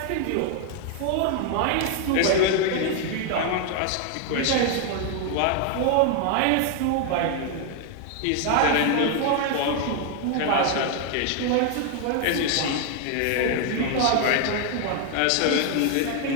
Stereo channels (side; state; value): both; different; correlation 0.00